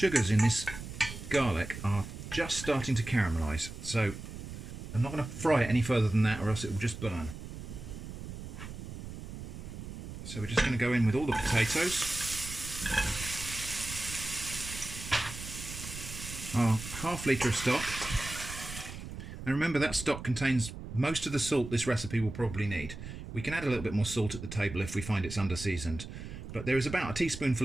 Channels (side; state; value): right; noise; rumble, 10 dB below the sound